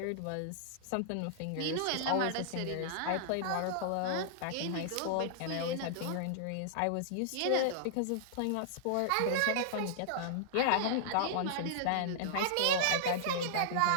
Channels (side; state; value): both; different; correlation -0.01